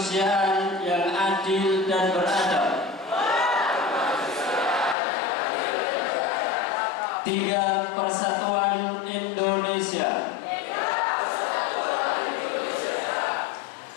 yang adil dan beradab. Tiga persatuan Indonesia.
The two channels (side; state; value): right; drops out; at 5.0 s